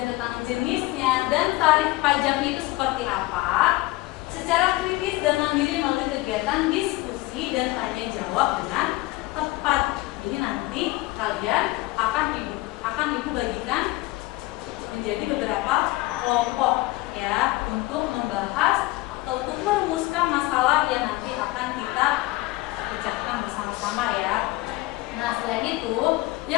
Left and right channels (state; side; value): quieter; right; 20.1 dB